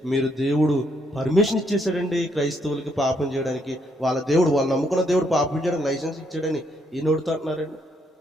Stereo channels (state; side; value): normal; both; correlation 0.73